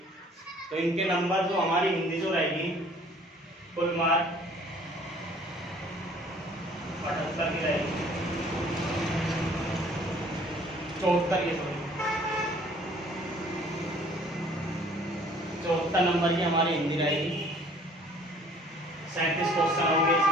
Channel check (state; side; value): normal; both; correlation 0.55